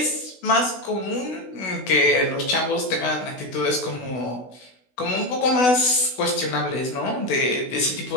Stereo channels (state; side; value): late; right; 16 ms